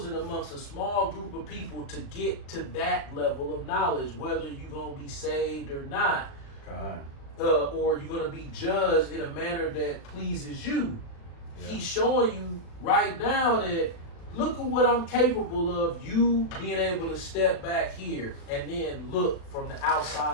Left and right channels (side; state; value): right; late; 36 ms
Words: amongst a small group of people to get to that level of knowledge, whether you're going to be saved or not. God. Or you're going to be judged in a manner that pleases you. Yeah. He's showing you right now that look at what I'm capable of, you being able to step back here and then look from the